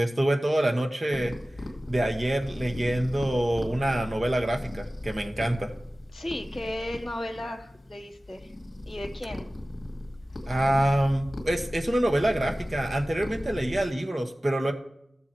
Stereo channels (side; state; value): both; normal; correlation 0.96